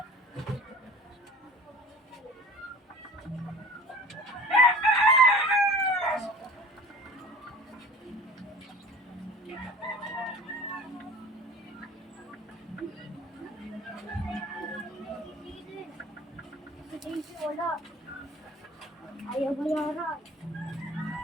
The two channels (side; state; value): both; normal; correlation 0.42